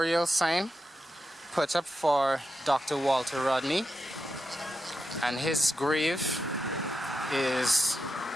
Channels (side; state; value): both; normal; correlation 0.88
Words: sign put up for Dr. Walter Rodney, and his grave is